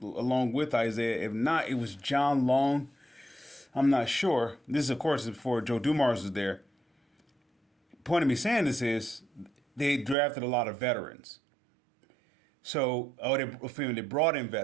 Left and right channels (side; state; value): left; drops out; at 10.2 s